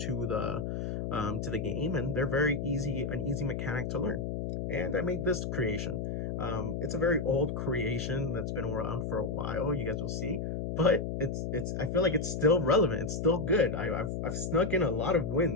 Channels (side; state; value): left; noise; hum, 3 dB below the sound